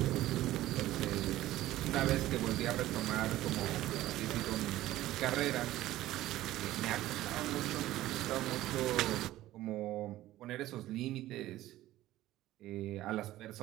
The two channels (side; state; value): left; quieter; 15.3 dB